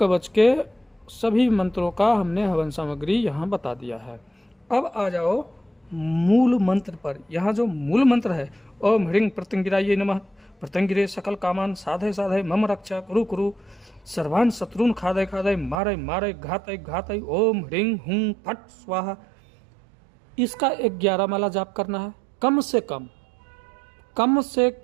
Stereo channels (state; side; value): drops out; left; at 15.8 s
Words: के, सभी मंत्रों का हमने हवन सामग्री यहाँ बता दिया है। अब आ जाओ मूल मंत्र पर। यहाँ जो मूल मंत्र है ओम ह्रीं प्रत्यंगिराय नमः, प्रत्यंगिरे सकल कामान साधय साधय मम रक्षा कुरु कुरु सर्वान् शत्रुन खादय खादय मारय मारय घातय घातय ओम ह्रीं हुं फट स्वाहा। इसका 11 माला जाप करना है, कम से